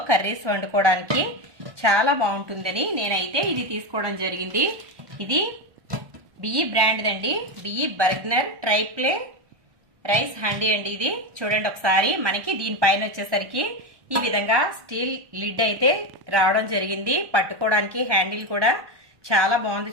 కర్రీస్ వండుకోవడానికి చాలా బాగుంటుందని నేనైతే ఇది తీసుకోవడం జరిగింది. ఇది బిఈ బ్రాండ్ అండి, బిఈ బర్గనర్ ట్రైప్లే రైస్ హండీ అండి. ఇది చూడండి ఒకసారి. మనకి దీనిపైన వచ్చేసరికి ఈ విధంగా స్టీల్ లిడ్ అయితే రావడం జరిగింది. పట్టుకోవడానికి హ్యాండిల్ కూడా చాలా బాగుంది,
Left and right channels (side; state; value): left; late; 1.1 ms